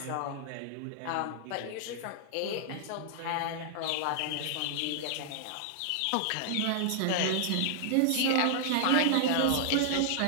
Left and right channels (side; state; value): both; different; correlation -0.01